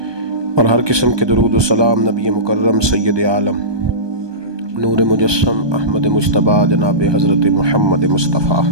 اور ہر قسم کے درود و سلام نبی مکرم سید عالم نور مجسم احمد مجتبیٰ جناب حضرت محمد مصطفیٰ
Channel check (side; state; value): left; late; 1.2 ms